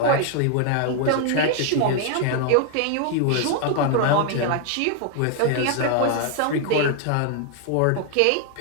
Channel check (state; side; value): different; both; correlation 0.00